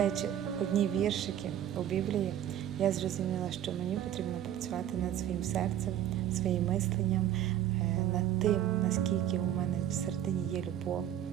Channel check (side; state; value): left; quieter; 11.1 dB